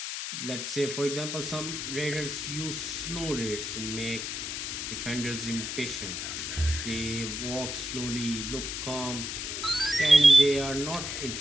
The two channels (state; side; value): noise; left; hiss, 4 dB below the sound